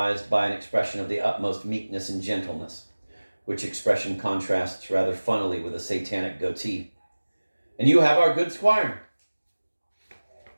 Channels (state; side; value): inverted; both; correlation -1.00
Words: by an expression of the utmost meekness and gentleness, which expression contrasts rather funnily with a satanic goatee. And you have our good squire.